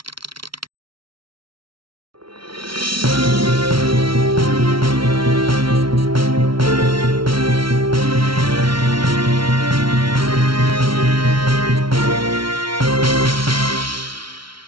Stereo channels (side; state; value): left; late; 0.74 ms